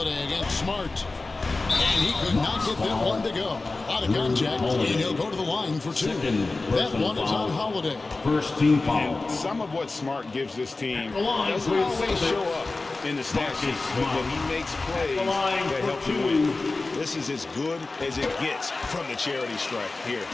against Smart. And he could not get that one to go. Out of contact, and he'll go to the line for 2. That one is on Holiday. First team foul. And some of what Smart gives this team doesn't always show up in the stat sheet, but when he makes plays that help you win, this is as good as it gets from the charity strike here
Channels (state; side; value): quieter; right; 3.4 dB